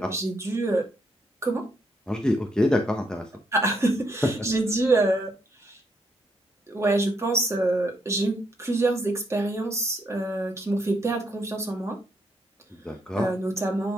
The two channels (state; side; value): normal; both; correlation 0.75